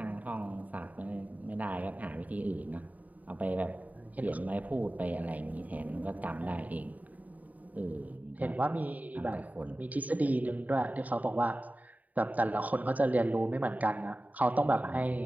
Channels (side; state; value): left; late; 0.074 ms